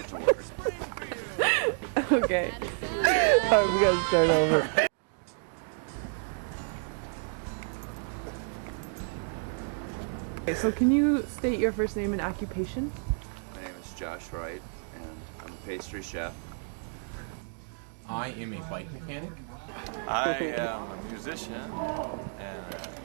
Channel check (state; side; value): silent; left; 57 dB below the other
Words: to work. Okay. Alright, we gotta start over. Okay, so can you state your first name and occupation? My name is Josh Wright, and I'm a pastry chef. I am a bike mechanic. I am a musician, and